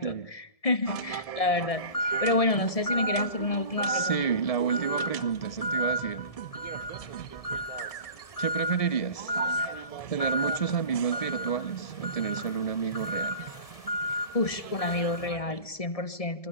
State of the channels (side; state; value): right; late; 1.7 ms